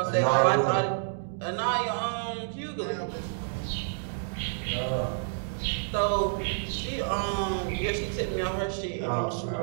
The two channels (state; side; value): silent; left; digital silence